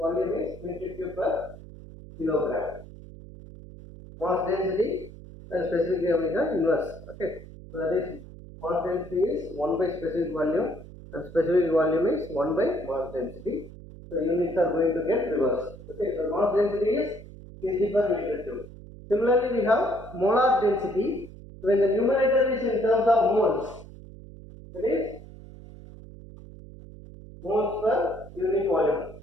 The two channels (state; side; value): noise; right; hum, 16 dB below the sound